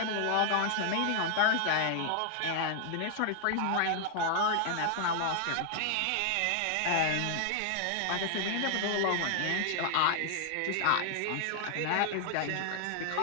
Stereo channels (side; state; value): both; different; correlation 0.00